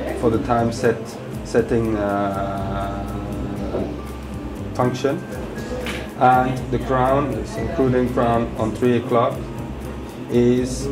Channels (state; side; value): identical; both; correlation 1.00